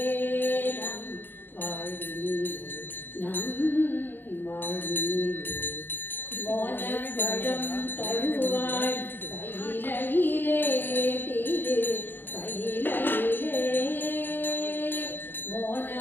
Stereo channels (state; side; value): late; right; 0.095 ms